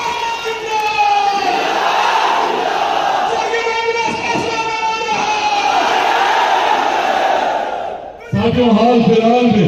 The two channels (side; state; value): both; identical; correlation 1.00